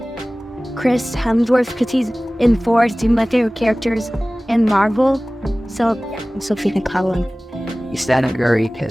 Chris Hemsworth because he's in Thor, he's my favorite characters in Marvel. So yeah, I'm Sophia Collins. Stephen Curry,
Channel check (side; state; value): both; normal; correlation 0.98